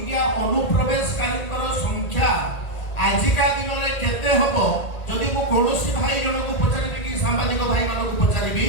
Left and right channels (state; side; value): late; right; 1.8 ms